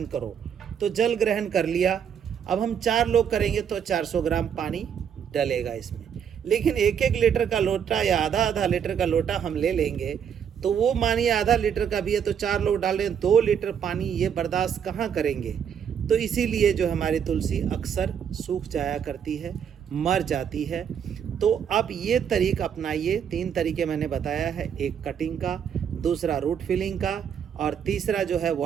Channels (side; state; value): left; quieter; 8.0 dB